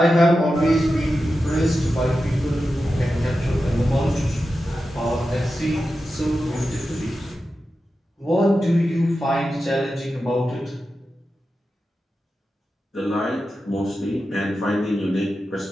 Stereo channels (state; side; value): normal; both; correlation 0.91